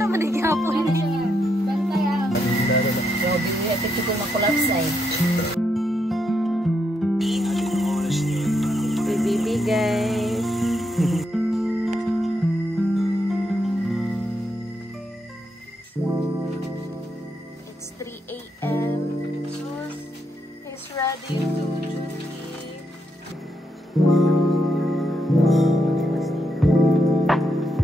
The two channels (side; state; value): both; normal; correlation 0.80